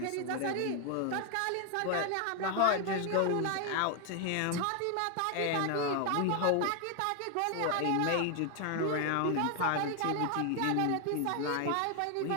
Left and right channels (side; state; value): both; different; correlation 0.00